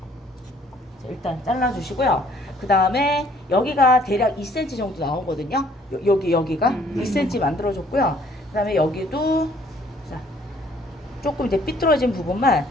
일단 잘라주시고요. 그 다음에 여기가 대략 2cm 정도 나오거든요. 여기가 2cm 만들어줬고요. 그 다음에 여기도 자, 조금 이제 삐뚤어진 부분만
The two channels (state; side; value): normal; both; correlation 0.61